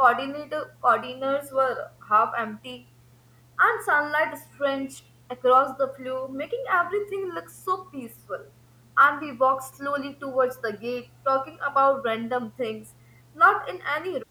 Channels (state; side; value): identical; both; correlation 1.00